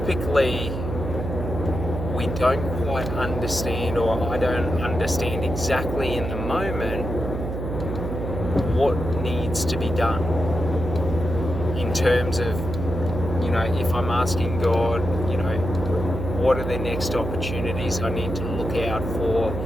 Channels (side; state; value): right; noise; hum, 5 dB below the sound